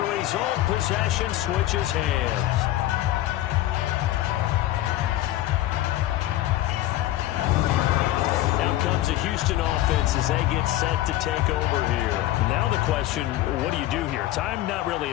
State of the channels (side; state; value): right; quieter; 14.7 dB